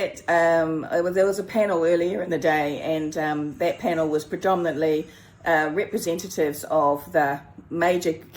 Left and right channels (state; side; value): identical; both; correlation 1.00